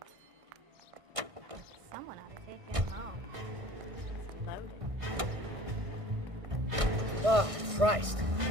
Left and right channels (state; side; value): late; left; 1.6 ms